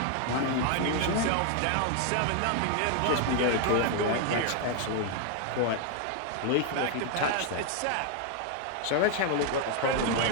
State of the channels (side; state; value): both; different; correlation 0.00